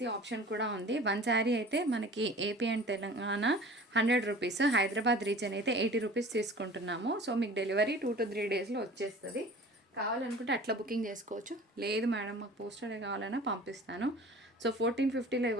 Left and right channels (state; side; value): normal; both; correlation 0.43